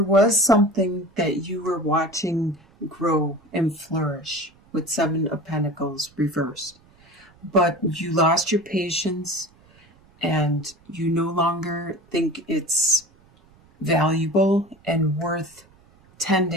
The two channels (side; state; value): right; noise; rumble, 29 dB below the sound